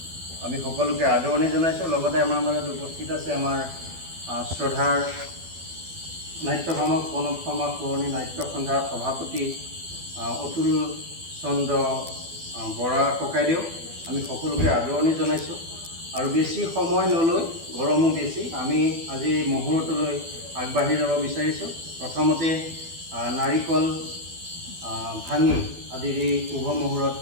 আমি সকলোকে আদৰণি জনাইছোঁ। লগতে আমাৰ মাজত উপস্থিত আছে আমাৰ শ্ৰদ্ধাৰ নাট্যভামক প্ৰণৱ শৰ্মা পুৰণি নাট্য সন্ধ্যাৰ সভাপতি অতুল চন্দ্ৰ বৰা ককাইদেউ। আমি সকলোকে আদৰণি জনাইছোঁ। আৰু বেছি সময় নলৈ, গৰমো বেছি, আমি আজি মুহূৰ্তলৈ আগবাঢ়ি যাব বিচাৰিছোঁ। প্ৰথমতে নাৰিকল ভাঙি আজিৰ এই শুভ মুহূৰ্ত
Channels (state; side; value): late; left; 12 ms